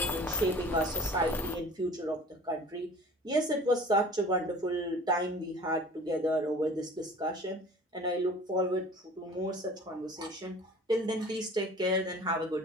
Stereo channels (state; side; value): normal; both; correlation 0.44